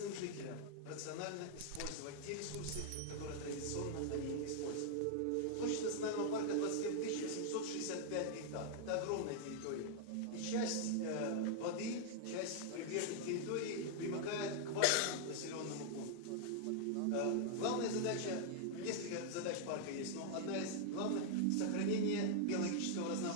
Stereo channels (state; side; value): different; both; correlation -0.01